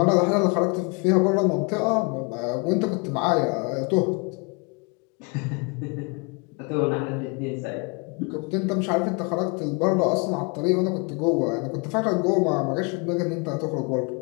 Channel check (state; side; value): quieter; right; 31.6 dB